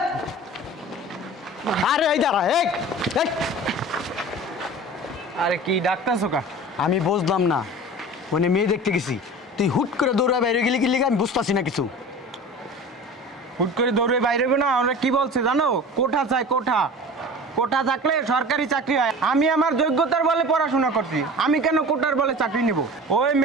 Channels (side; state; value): both; normal; correlation 0.37